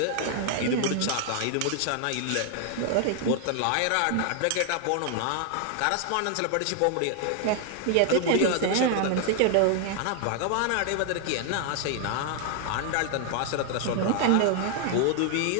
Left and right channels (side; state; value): both; different; correlation 0.00